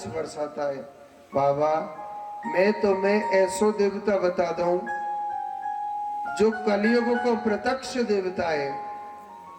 बरसाता है। बाबा, मैं तुम्हें ऐसो देवता बता दूं जो कलयुग को प्रत्यक्ष देवता है।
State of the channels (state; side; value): identical; both; correlation 1.00